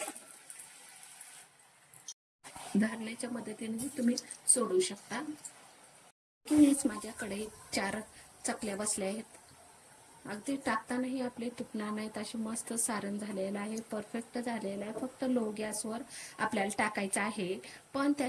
धारण्याच्या मदतीने तुम्ही सोडू शकता. किंवाच माझ्याकडे 4 चकल्या बसल्या आहेत. अगदी टाकतानाही आपले तुटणार नाहीत, अशी मस्त सारण झालेलं आहे, परफेक्ट झालेलं आहे. फक्त लो गॅसवर आपल्याला टाकायचं आहे, पण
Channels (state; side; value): identical; both; correlation 1.00